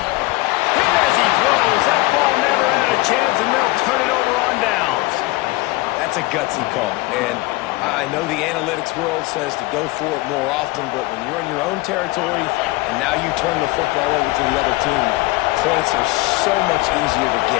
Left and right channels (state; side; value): quieter; right; 21.3 dB